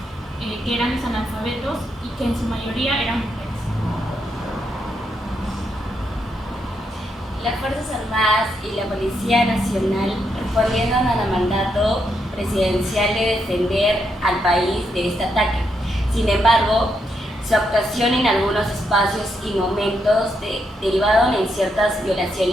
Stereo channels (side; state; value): both; normal; correlation 0.80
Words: que eran los analfabetos y que en su mayoría eran mujeres. Las Fuerzas Armadas y la Policía Nacional respondieron al mandato presidencial de defender al país de este ataque. Sin embargo, su actuación en algunos espacios y momentos derivaron en ciertas